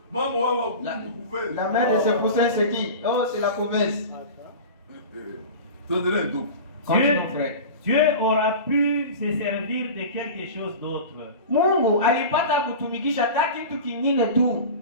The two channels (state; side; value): inverted; both; correlation -0.32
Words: mama wao wa kuku La, kuveze. la mère de ce poussin, c'est qui? Oh, c'est la couveuse. Tuendelee ndugu. Continue, mon frère. Dieu aura pu se servir de quelque chose d'autre. Mungu alipata kutumikisha hata kitu kingine tu.